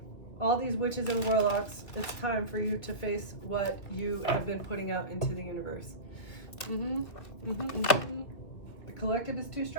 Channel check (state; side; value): late; right; 2.6 ms